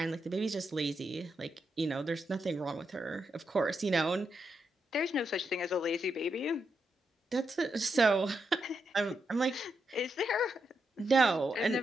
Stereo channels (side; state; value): both; normal; correlation 0.83